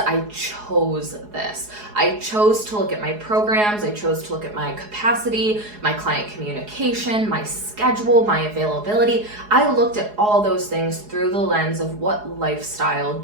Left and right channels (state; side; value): late; left; 4.8 ms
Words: chose this. I chose to look at my programs. I chose to look at my capacity, my client communication, my schedule, my availability. I looked at all those things through the lens of what lifestyle